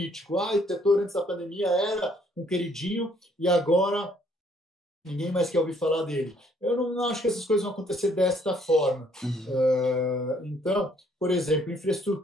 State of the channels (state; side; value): normal; both; correlation 0.65